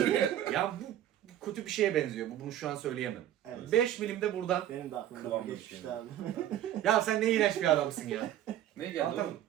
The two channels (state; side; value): quieter; left; 11.8 dB